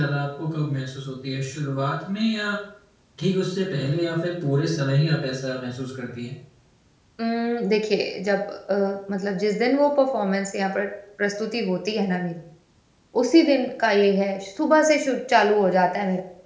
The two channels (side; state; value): both; identical; correlation 1.00